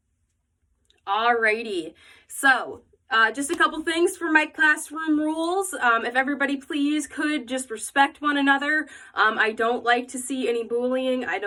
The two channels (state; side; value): identical; both; correlation 1.00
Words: Alrighty, so just a couple things for my classroom rules. If everybody please could just respect one another. I don't like to see any bullying. I